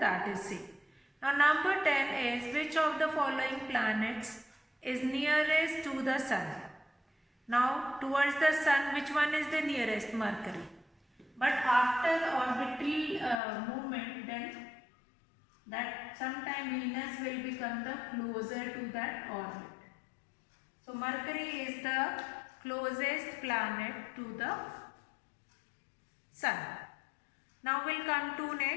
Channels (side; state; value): right; drops out; at 13.4 s